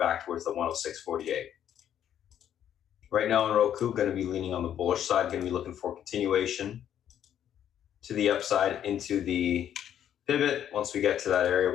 towards the 106.48. Right now in Roku, going to be leaning on the bullish side, going to be looking for continuation to the upside into the pivot. Once we get to that area,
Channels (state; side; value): quieter; right; 10.1 dB